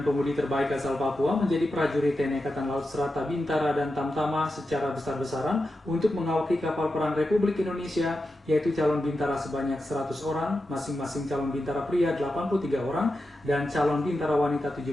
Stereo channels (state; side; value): normal; both; correlation 0.90